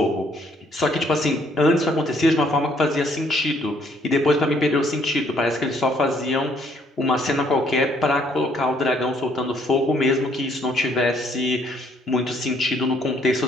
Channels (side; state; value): both; normal; correlation 0.66